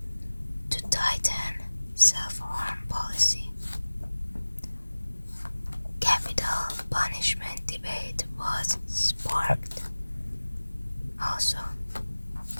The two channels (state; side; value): inverted; both; correlation -1.00